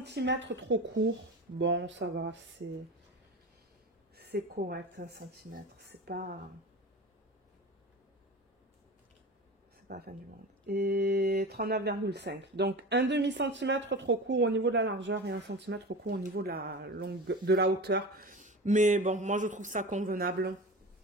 trop court. Bon, ça va, c'est correct, 1 cm. C'est pas la fin du monde. Et 39,5. Donc, un demi-centimètre trop court au niveau de la largeur et 1 cm trop court au niveau de la hauteur. Mais bon, moi je trouve ça convenable.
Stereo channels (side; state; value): both; normal; correlation 0.31